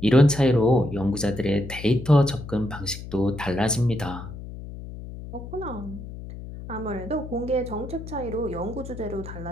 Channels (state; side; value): noise; left; hum, 11 dB below the sound